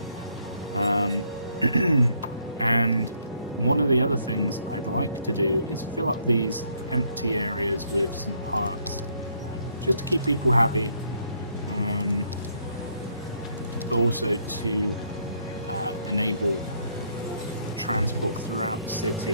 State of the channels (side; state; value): both; inverted; correlation -0.70